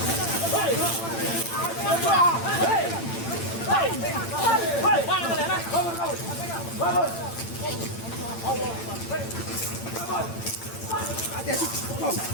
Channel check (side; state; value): right; late; 8.9 ms